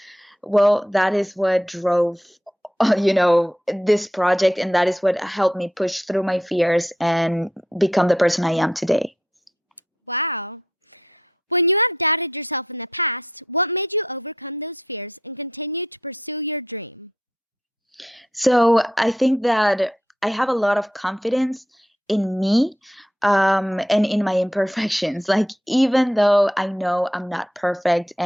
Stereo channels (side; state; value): both; normal; correlation 0.79